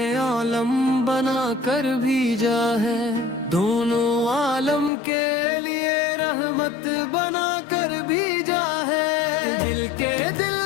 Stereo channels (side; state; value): right; drops out; at 4.9 s